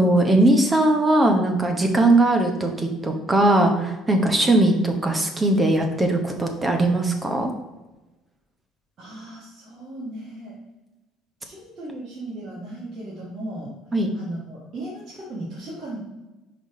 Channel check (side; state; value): both; normal; correlation 0.70